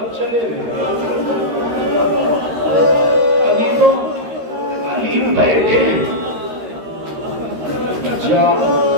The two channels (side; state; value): left; late; 13 ms